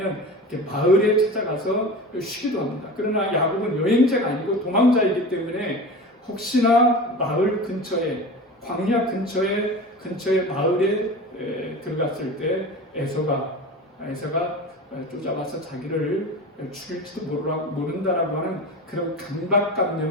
이렇게 마을에 찾아가서 쉬기도 합니다. 그러나 야곱은 여행자가 아니고 도망자이기 때문에 혹시나 마을 근처에 광야 근처에 마을에 들어갔을 때 에서가 쫓아와서 자기를 죽일지도 모른다라고 하는 그런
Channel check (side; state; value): both; normal; correlation 0.32